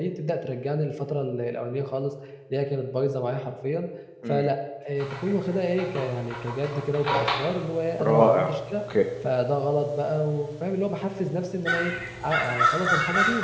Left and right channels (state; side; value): identical; both; correlation 1.00